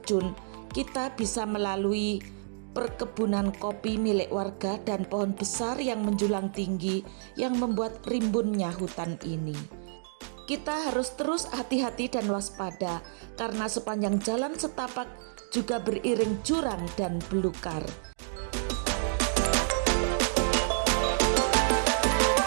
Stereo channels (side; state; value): left; silent; digital silence